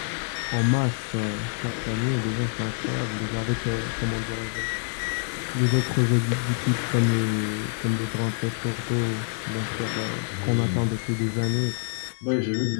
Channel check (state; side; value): silent; right; digital silence